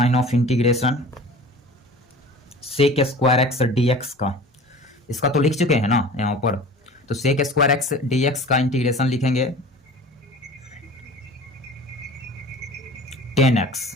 of integration sec square X D X का, इसका तो लिख चुके हैं ना यहाँ पर, तो sec square X D X का इंटीग्रेशन लिखेंगे 10x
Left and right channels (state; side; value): normal; both; correlation 0.40